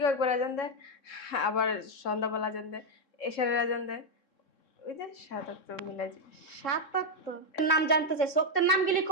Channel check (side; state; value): right; late; 3.7 ms